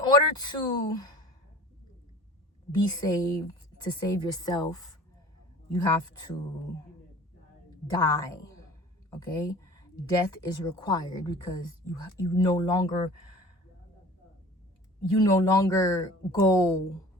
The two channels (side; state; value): both; normal; correlation 0.43